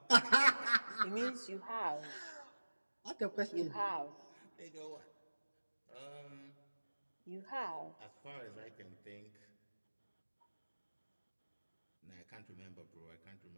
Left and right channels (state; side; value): inverted; both; correlation -1.00